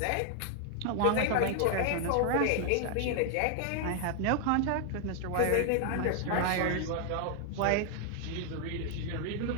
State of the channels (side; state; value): both; different; correlation 0.00